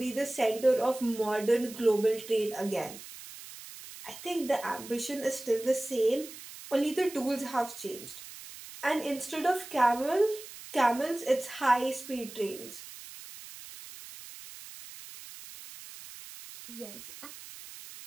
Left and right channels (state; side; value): noise; right; hiss, 15 dB below the sound